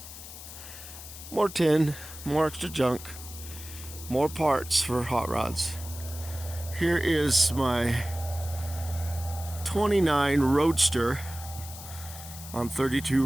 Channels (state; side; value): noise; left; hiss, 13 dB below the sound